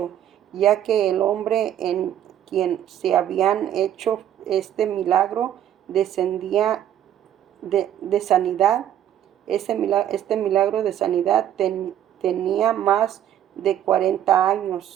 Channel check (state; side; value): quieter; left; 10.9 dB